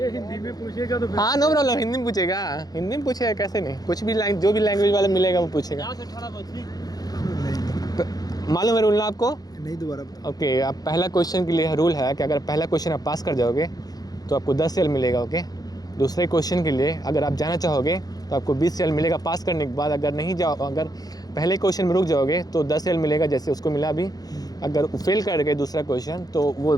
में पूछेगा तो हाँ नो प्रॉब्लम हिंदी में पूछेगा हिंदी में पूछेगा कैसे नहीं कुछ भी जो भी लैंग्वेज वाला मिलेगा वो पूछेगा मालूम है रूल ना आपको नहीं दोबारा. ओके अब पहला क्वेश्चन के लिए रूल है कि अगर पहला क्वेश्चन आप पास कर जाओगे तो आपको 10 रियल मिलेगा. ओके दूसरे क्वेश्चन के लिए अगर आप जाना चाहोगे तो आपको 20 रियल मिलेगा पास करने के बाद. अगर पहले क्वेश्चन में रुक जाओगे तो 10 रियल मिलेगा जैसे उसको मिला अभी. अगर फेल कर गए दूसरा क्वेश्चन तो वो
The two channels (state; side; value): late; right; 0.19 ms